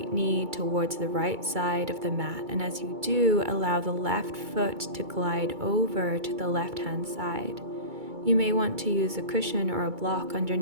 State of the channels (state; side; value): late; left; 2.3 ms